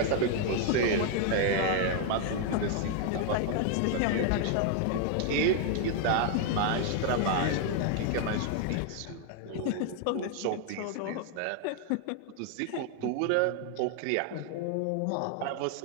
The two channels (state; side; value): different; both; correlation 0.00